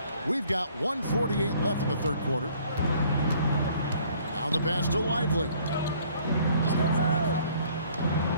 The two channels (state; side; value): inverted; both; correlation -0.59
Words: We've got 1:48 left in the third quarter. Now the pass to Lively.